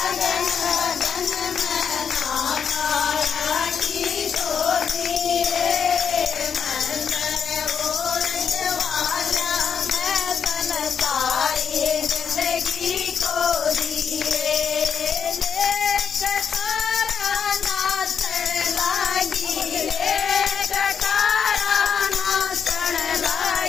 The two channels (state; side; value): quieter; right; 7.1 dB